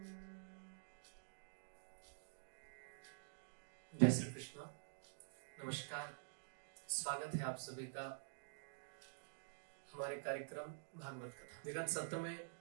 जय श्री कृष्ण। नमस्कार, स्वागत है आप सभी का हमारे कार्यक्रम भागवत कथा। विगत सत्र में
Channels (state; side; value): silent; left; digital silence